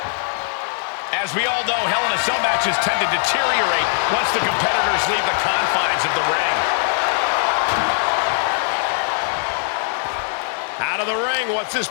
As we all know, Hell in a Cell matches tend to deteriorate once the competitors leave the confines of the ring. Out of the ring, what's his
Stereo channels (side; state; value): right; silent; digital silence